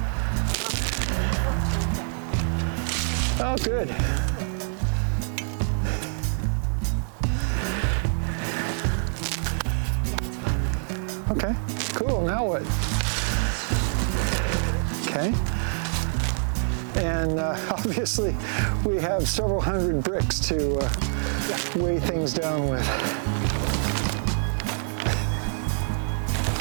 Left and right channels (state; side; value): silent; left; 61 dB below the other